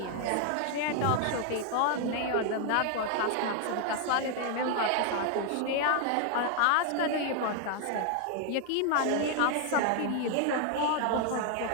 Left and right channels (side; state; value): both; different; correlation 0.00